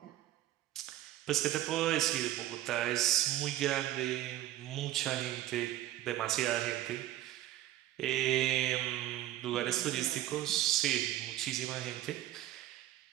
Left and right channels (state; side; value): quieter; left; 13.7 dB